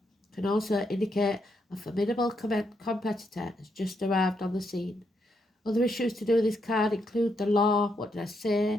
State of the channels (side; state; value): both; normal; correlation 0.79